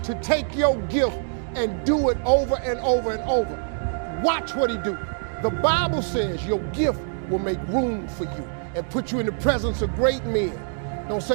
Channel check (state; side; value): silent; left; digital silence